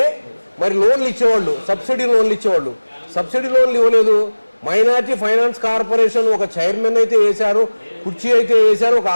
మరి లోన్లు ఇచ్చేవాళ్ళు, సబ్సిడీ లోన్లు ఇచ్చేవాళ్ళు. సబ్సిడీ లోన్లు ఇవ్వలేదు. మైనార్టీ ఫైనాన్స్ కార్పొరేషన్ ఒక చైర్మన్ అయితే వేశారు, కుర్చీ అయితే వేశారు, ఒక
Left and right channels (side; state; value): both; inverted; correlation -1.00